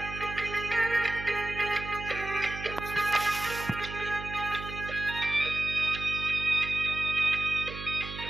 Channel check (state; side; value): noise; right; hum, 10 dB below the sound